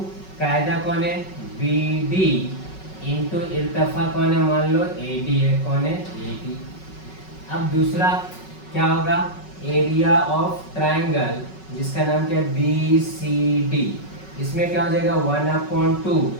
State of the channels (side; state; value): right; late; 5.4 ms